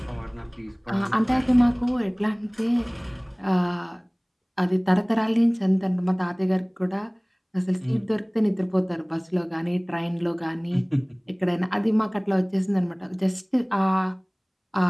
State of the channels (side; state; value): both; identical; correlation 1.00